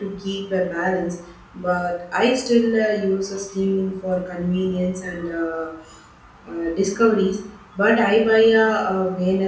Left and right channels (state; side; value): identical; both; correlation 1.00